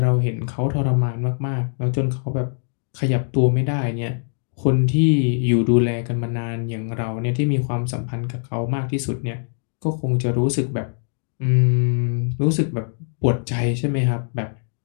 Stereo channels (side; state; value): right; silent; digital silence